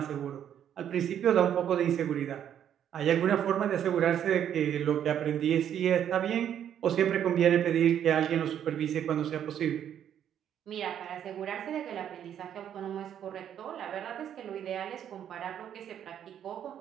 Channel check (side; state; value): left; quieter; 9.6 dB